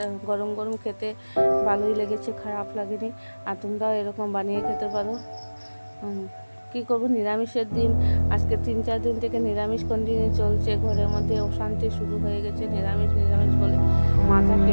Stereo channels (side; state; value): both; inverted; correlation -1.00